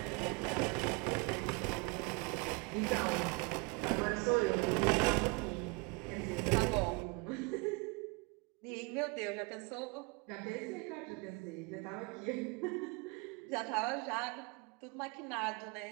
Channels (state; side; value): quieter; left; 29.5 dB